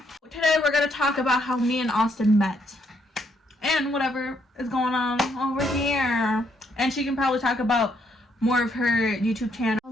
Today we're gonna talk about how me and Austin met and whatever is going on over here. And she can probably talk about more of her YouTube channel.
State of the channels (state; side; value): normal; both; correlation 0.73